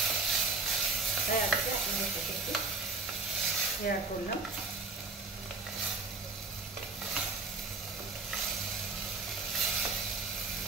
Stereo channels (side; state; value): left; quieter; 3.9 dB